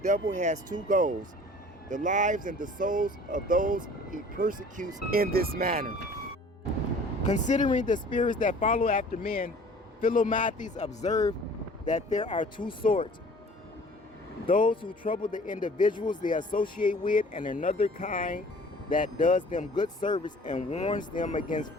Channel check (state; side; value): normal; both; correlation 0.49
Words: has 2 goals: the lives and the souls of those he persecutes in this manner. Considering the spirits that follow after men, Philomathes observed that there are two sorts: those who trouble the individuals they associate with, and another kind that does them good service and warns them against